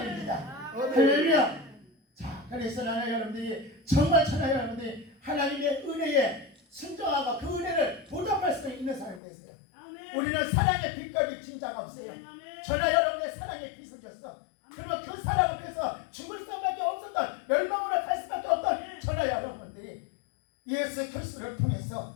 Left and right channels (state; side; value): drops out; right; at 9.2 s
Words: 아멘. 할렐루야. 자, 그래서 나는 여러분들이 정말 천하 여러분들이 하나님의 은혜에 순종하고 그 은혜를 보답할 수 있는 사람이 되세요. 아멘. 우리는 사랑의 빛깔이 진짜가 없어요. 아멘. 천하 여러분의 사랑의 빛을 줬어. 그리고 그 사랑을 위해서 죽을 수밖에 없었던 멸망으로 갈 수밖에 없던 천하 여러분들이 예수 그리스도를 통해서